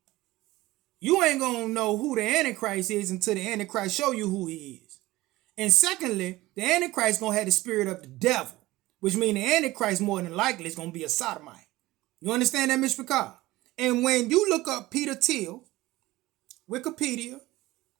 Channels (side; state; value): left; quieter; 18.4 dB